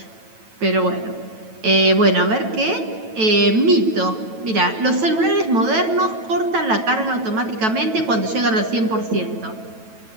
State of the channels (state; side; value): late; left; 9.1 ms